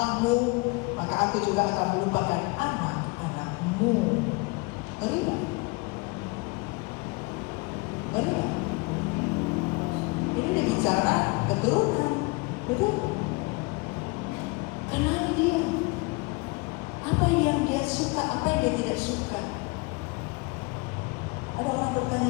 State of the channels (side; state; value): right; quieter; 27.0 dB